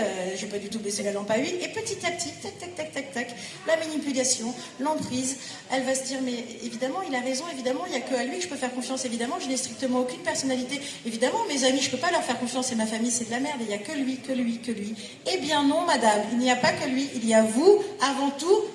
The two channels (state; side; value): identical; both; correlation 1.00